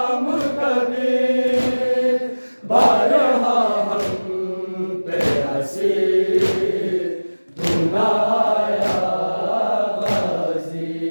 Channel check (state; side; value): inverted; both; correlation -1.00